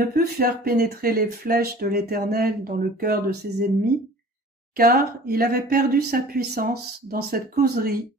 put faire pénétrer les flèches de l'Éternel dans le cœur de ses ennemis, car il avait perdu sa puissance dans cette causerie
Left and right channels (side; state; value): both; normal; correlation 0.45